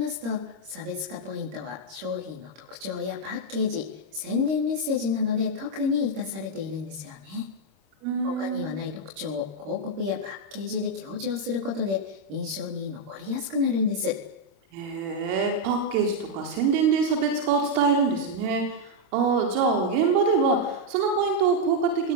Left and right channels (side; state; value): left; late; 26 ms